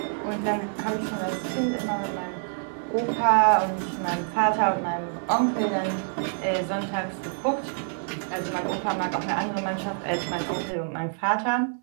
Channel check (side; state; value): left; silent; 60 dB below the other